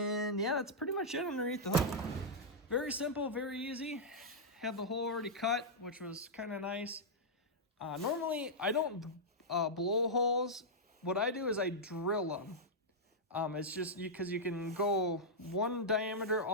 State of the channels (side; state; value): both; normal; correlation -0.08